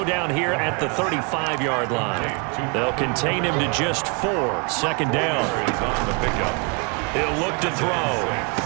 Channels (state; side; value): quieter; left; 33.3 dB